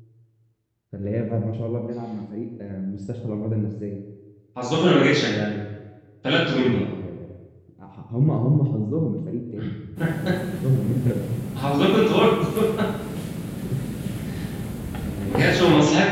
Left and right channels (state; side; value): identical; both; correlation 1.00